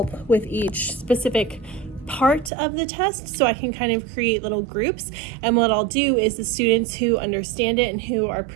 with each specific part of the test, so I can kind of create little groups. And what I'll do is the students who understand it and who are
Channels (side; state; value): left; drops out; at 2.5 s